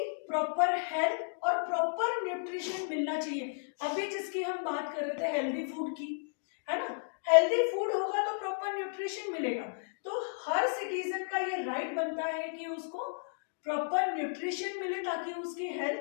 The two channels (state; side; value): silent; right; digital silence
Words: प्रॉपर हेल्थ और प्रॉपर न्यूट्रिशन मिलना चाहिए। अभी जिसकी हम बात कर रहे थे हेल्दी फूड की, है ना, हेल्दी फूड होगा तो प्रॉपर न्यूट्रिशन मिलेगा। तो हर सिटीजन का ये राइट बनता है कि उसको प्रॉपर न्यूट्रिशन मिले ताकि उसकी